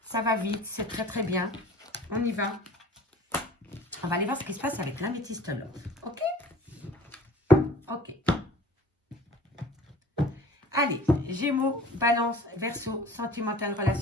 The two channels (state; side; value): normal; both; correlation 0.45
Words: ça va vite, c'est très très bien. On y va. On va aller voir ce qui se passe avec l'améthyste love. Ok? Ok. Allez, Gémeaux, Balance, Verseau, sentimental,